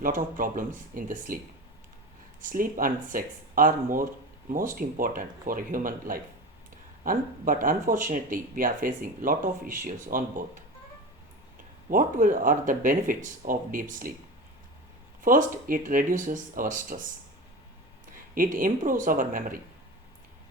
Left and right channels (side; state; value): both; normal; correlation 0.28